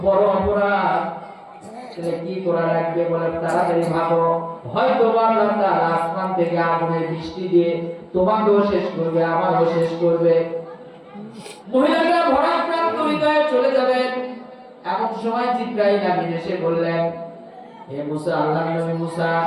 বড় অপরাধ। কি করা লাগবে? বলে তাড়াতাড়ি ভাগো, হয়তো আল্লাহ তাআলা আসমান থেকে আগুনের বৃষ্টি দিয়ে তোমাকেও শেষ করবে, আমারও শেষ করবে। মহিলাটা ভরাক্রান্ত হৃদয়ে চলে যাবেন। এমন সময় জিবরাইল আমিন এসে বললেন, হে মুসা, আল্লাহর নবী মুসা,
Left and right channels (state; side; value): identical; both; correlation 1.00